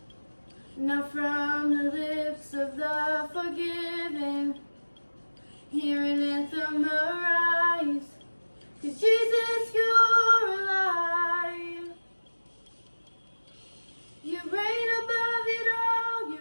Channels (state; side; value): inverted; both; correlation -1.00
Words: Now from the lips of the forgiven, hear an anthem arise, 'cause Jesus, you're alive. You reign above it all,